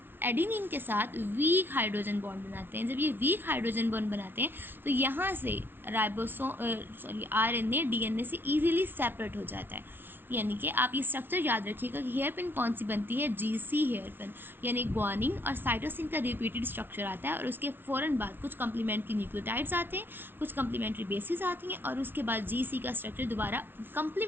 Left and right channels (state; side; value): late; left; 0.10 ms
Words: एडेनिन के साथ वीक हाइड्रोजन बॉन्ड बनाते हैं। जब ये वीक हाइड्रोजन बॉन्ड बनाते हैं तो यहाँ से RNA DNA से ईजिली सेपरेट हो जाता है। यानी कि आप ये स्ट्रक्चर याद रखिएगा कि हेयर पिन कौन सी बनती है, GC हेयर पिन, यानी ग्वानिन और साइटोसिन का रिपीटेड स्ट्रक्चर आता है, और उसके फ़ौरन बाद कुछ कम्प्लीमेंट्री न्यूक्लियोटाइड्स आते हैं, कुछ कम्प्लीमेंट्री बेसिस आती हैं, और उसके बाद GC का स्ट्रक्चर दोबारा